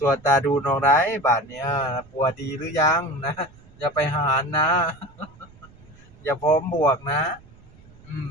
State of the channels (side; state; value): right; noise; rumble, 24 dB below the sound